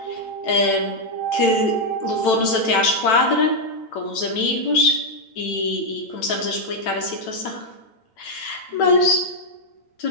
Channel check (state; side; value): late; right; 9.0 ms